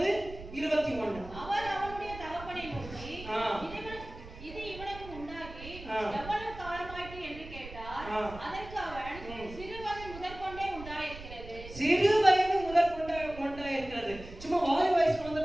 அவர் அவனுடைய தகப்பனை நோக்கி, இது இவனுக்கு உண்டாகி எவ்வளவு காலமாயிற்று என்று கேட்டார். அதற்கு அவன், சிறுவயது முதற்கொண்டே உண்டாயிருக்கிறது. சிறுவயது முதற்கொண்டே உண்டாயிருக்கிறது. சும்மா வாலி வயசு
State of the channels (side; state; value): right; noise; rumble, 14 dB below the sound